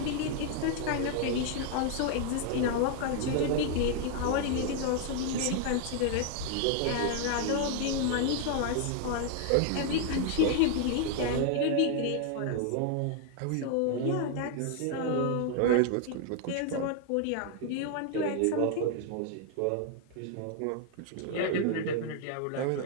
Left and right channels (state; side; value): different; both; correlation 0.00